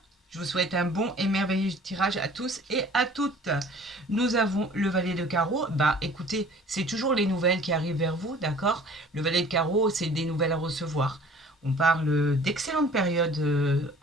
Je vous souhaite un bon et merveilleux tirage à tous et à toutes. Nous avons le valet de carreau. Bah écoutez, c'est toujours les nouvelles qui arrivent vers vous, d'accord? Le valet de carreau, c'est des nouvelles à recevoir. On parle d'excellentes périodes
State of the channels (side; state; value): both; normal; correlation 0.49